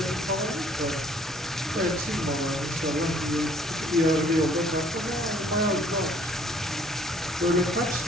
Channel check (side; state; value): both; normal; correlation 0.59